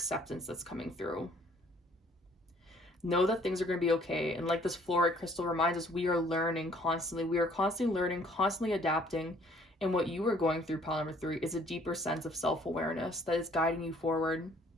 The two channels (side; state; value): both; normal; correlation 0.59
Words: that's coming through. Know that things are going to be okay. And like this fluorite crystal reminds us, we are learning constantly. We are constantly learning, constantly adapting. And what you are going through, pile number 3, is a deeper sense of self-awareness that is guiding you forward.